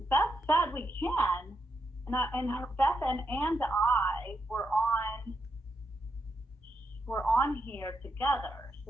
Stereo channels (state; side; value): normal; both; correlation 0.83